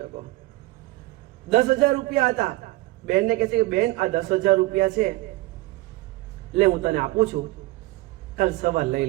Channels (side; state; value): left; quieter; 20.0 dB